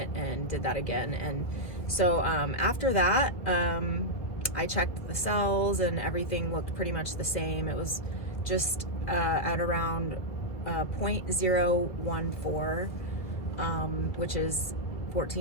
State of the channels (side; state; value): right; late; 1.8 ms